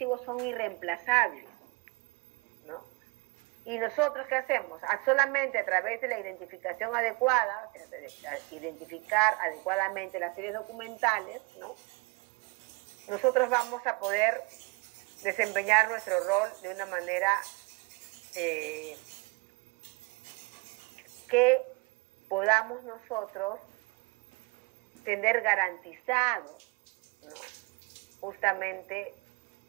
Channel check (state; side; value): quieter; left; 27.0 dB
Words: son irreemplazables, ¿no? ¿Y nosotros qué hacemos? Solamente a través de la identificación adecuada, o sea, de identificar adecuadamente las series documentales, ¿no? Nosotros vamos a poder desempeñar nuestro rol de una manera que podamos nosotros tener garantizado, ¿no? Justamente